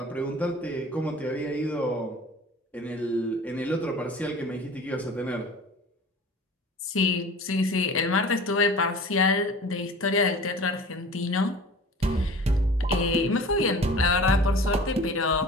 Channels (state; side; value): normal; both; correlation 0.41